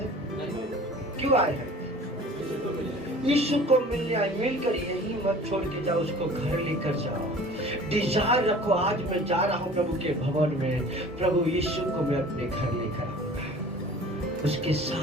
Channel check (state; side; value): normal; both; correlation 0.45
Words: क्यों आए हैं? यीशु को मिलने आए। मिलकर यही मत छोड़ के जाओ, उसको घर लेकर जाओ। डिजायर रखो, आज मैं जा रहा हूँ प्रभु के भवन में, प्रभु यीशु को मैं अपने घर लेकर आऊंगा, उसके